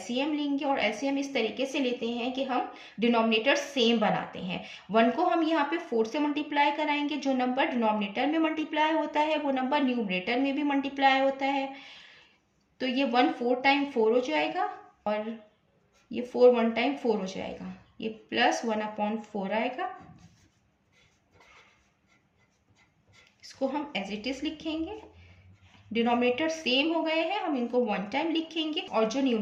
लेंगे और एलसीएम इस तरीके से लेते हैं कि हम डिनोमिनेटर सेम बनाते हैं। 1 को हम यहाँ पे 4 से मल्टीप्लाई कराएंगे, जो नंबर डिनोमिनेटर में मल्टीप्लाई होता है वो नंबर न्यूमरेटर में भी मल्टीप्लाई होता है, तो ये 1 4 टाइम 4 हो जाएगा और ये 4 1 टाइम 4 हो जाएगा, ये प्लस 1/4 आएगा। इसको हम एज इट इज लिखेंगे, डिनोमिनेटर सेम हो गए हैं, हम इनको 1 टाइम लिखेंगे और जो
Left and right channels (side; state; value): both; identical; correlation 1.00